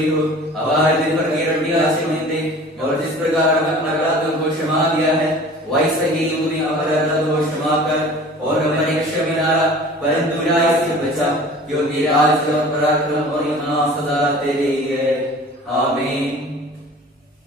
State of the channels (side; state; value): both; normal; correlation 0.44